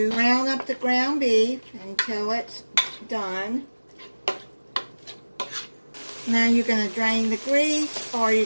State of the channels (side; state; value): both; inverted; correlation -1.00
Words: brown up the ground beef until it's done. Now you're going to drain the grease, or you're